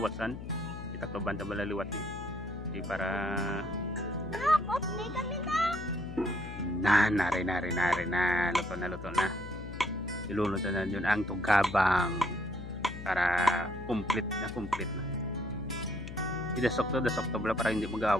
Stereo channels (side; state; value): left; noise; hum, 10 dB below the sound